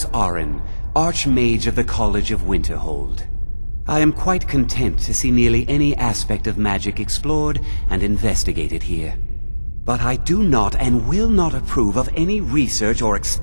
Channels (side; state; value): both; inverted; correlation -1.00